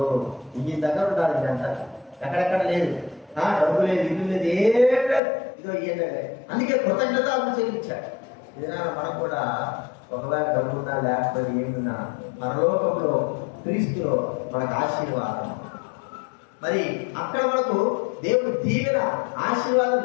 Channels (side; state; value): right; drops out; at 5.2 s